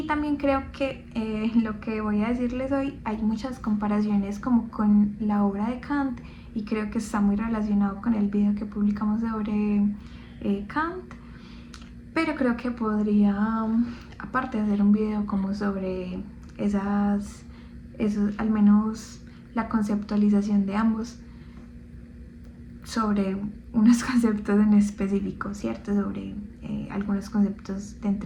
también creo que lo que voy a decirles hoy hay muchas comparaciones como con la obra de Kant, y creo que está muy relacionado con el video que publicamos sobre Kant. Pero creo que podría, aparte, hacer un video como sobre esos, al menos la conceptualización de ambos, sobre unos conceptos en específico, ¿cierto? Sobre algunos conceptos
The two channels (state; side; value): identical; both; correlation 1.00